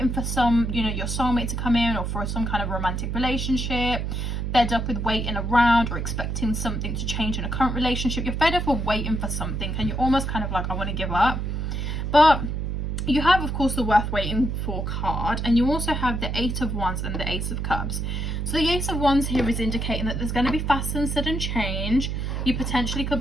for you know, your soulmate to come in, or for some kind of romantic relationship. Fed up with waiting around or expecting something to change in a current relationship. You're fed up of waiting for something and you're almost kind of like, I want to give up. But You have, of course, the worth waiting for card, and you also have the 8 of Wands and the Ace of Cups. So the Ace of Wands here is indicating that there's going to be fast and sudden change. You potentially could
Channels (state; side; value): noise; right; hum, 2 dB below the sound